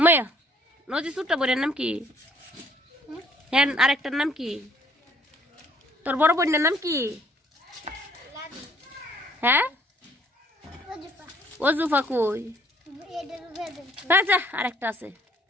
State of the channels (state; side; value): normal; both; correlation 0.61